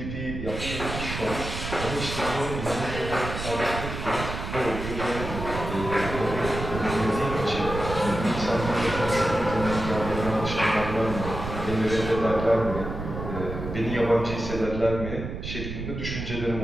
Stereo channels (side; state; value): right; noise; rumble, 6 dB below the sound